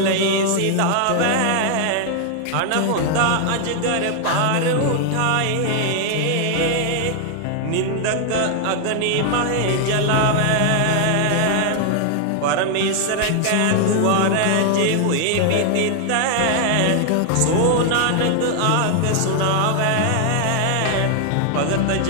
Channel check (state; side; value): different; both; correlation 0.00